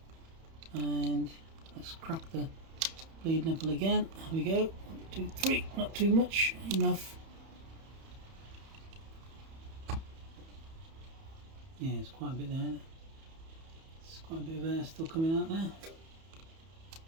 and let's crack the bleed nipple again. Here we go. 1, 2, 3. Not too much, enough. Yeah, it's quite a bit there, isn't it? There's quite a bit of air still coming out there.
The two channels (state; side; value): late; left; 31 ms